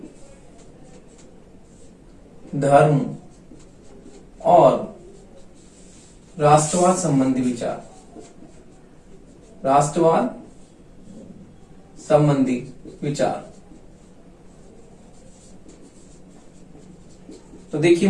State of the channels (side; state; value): both; identical; correlation 1.00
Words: धर्म और राष्ट्रवाद संबंधी विचार, तो देखिए